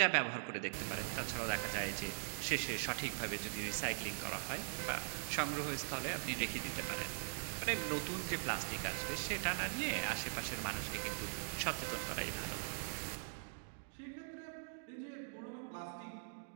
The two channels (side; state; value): left; silent; digital silence